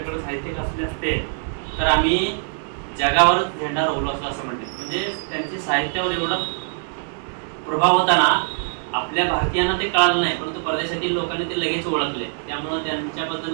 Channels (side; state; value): left; silent; digital silence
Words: साहित्यिक असले असते तर आम्ही जगावरच झेंडा रोवलो असतो असं म्हणते। म्हणजे त्यांचे साहित्यावर एवढा प्रभाव होता ना, आपल्या भारतीयांना ते कळालं नाही, परंतु परदेशातील लोकांनी ते लगेच ओळखले। त्यामुळे